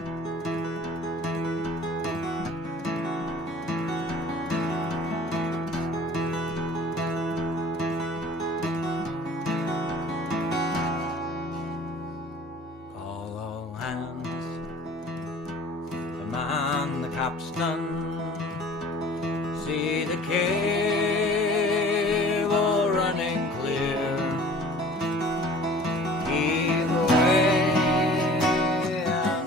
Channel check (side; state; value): both; normal; correlation 0.48